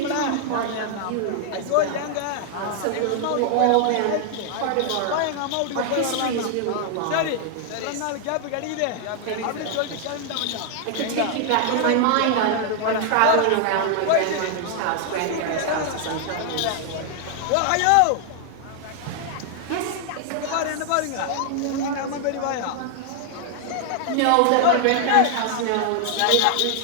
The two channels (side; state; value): both; different; correlation 0.00